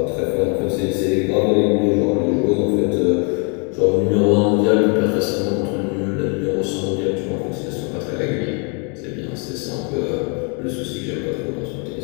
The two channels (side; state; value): right; quieter; 36.5 dB